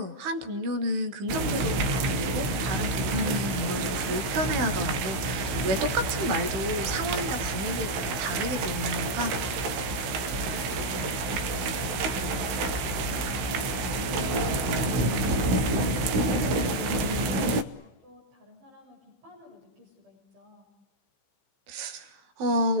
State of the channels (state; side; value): late; left; 16 ms